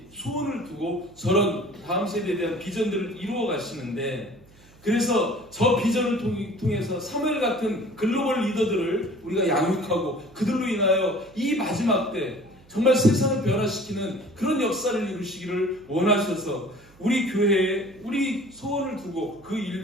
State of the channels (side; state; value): right; noise; hum, 27 dB below the sound